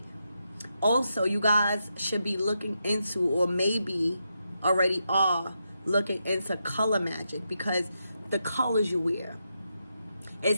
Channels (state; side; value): inverted; both; correlation -0.85